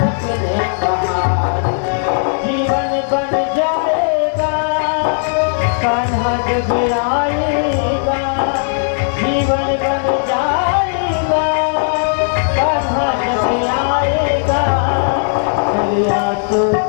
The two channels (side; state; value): right; silent; digital silence